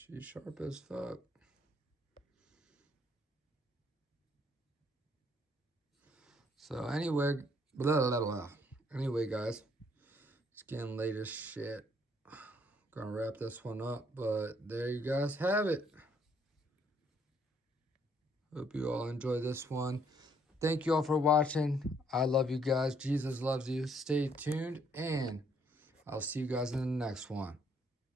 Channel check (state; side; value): normal; both; correlation 0.68